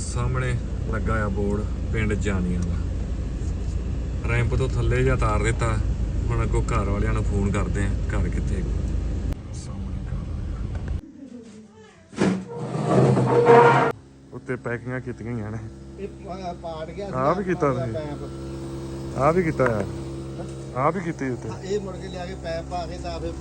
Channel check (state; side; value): identical; both; correlation 1.00